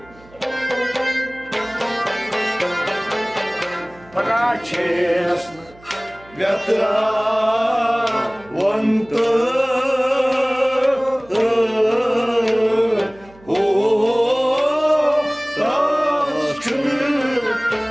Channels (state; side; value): noise; right; hum, 25 dB below the sound